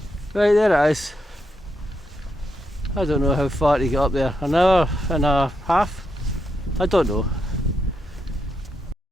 Right, there it is. I don't know how far to get up there, an hour and a half? I don't know.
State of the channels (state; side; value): normal; both; correlation 0.82